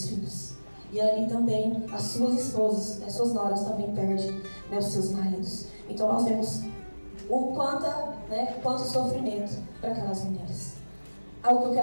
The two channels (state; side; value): inverted; both; correlation -1.00